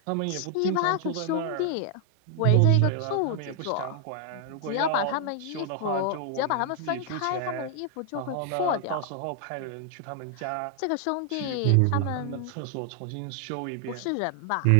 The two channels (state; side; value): different; both; correlation 0.00